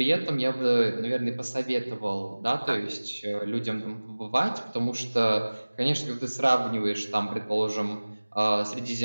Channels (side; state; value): both; inverted; correlation -1.00